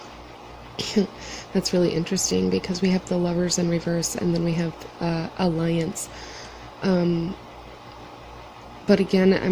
That's really interesting because we have the Lovers in reverse, and then we have Alliance. But again,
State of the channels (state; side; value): identical; both; correlation 1.00